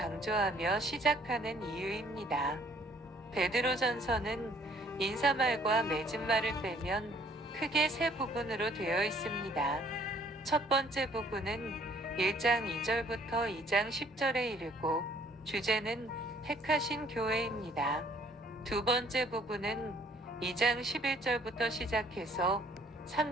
시작하는 이유입니다. 베드로전서는 인사말과 맺은말을 빼면 크게 세 부분으로 되어 있습니다. 첫 번째 부분은 1장 2절부터 2장 10절에 이르고 주제는 택하신 교회입니다. 두 번째 부분은 2장 11절부터 시작해서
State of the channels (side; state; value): both; normal; correlation 0.61